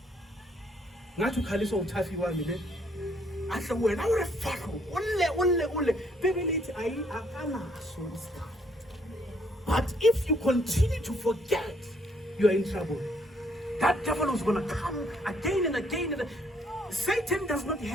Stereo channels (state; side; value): normal; both; correlation 0.67